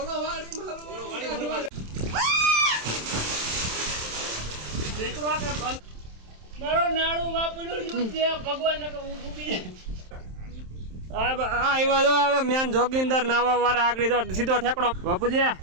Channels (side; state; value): left; late; 27 ms